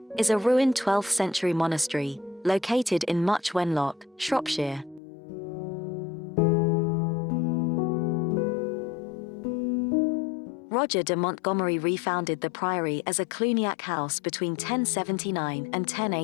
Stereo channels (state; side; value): drops out; right; at 5.0 s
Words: is a ruined 12th century monastery, located in Much Wenlock, Shropshire. Roger de Montgomery refounded the priory as a Cluniac house between 1079 and